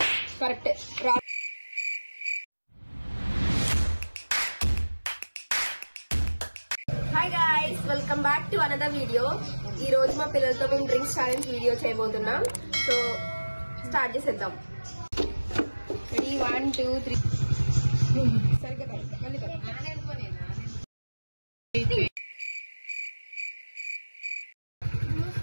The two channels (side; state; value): both; inverted; correlation -1.00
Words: correct. Hi guys, welcome back to another video. ఈ రోజు మా పిల్లలతో మేము డ్రింక్స్ ఛాలెంజ్ వీడియో చేయబోతున్నాం. సో స్టార్ట్ చేసేద్దాం. రెడీ 1 2 3. సరిగ్గా మళ్ళీ